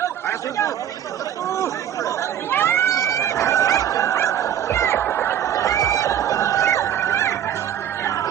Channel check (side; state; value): left; quieter; 10.2 dB